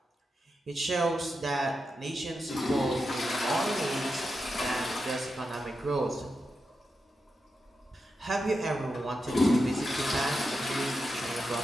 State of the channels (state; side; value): normal; both; correlation 0.88